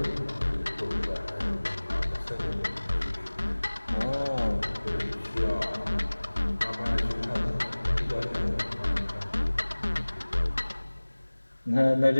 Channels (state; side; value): inverted; both; correlation -1.00